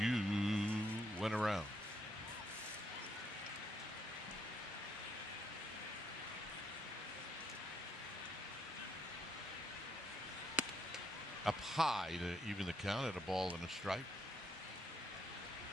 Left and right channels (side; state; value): both; normal; correlation 0.74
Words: went around." Up high to even the count at a ball and a strike.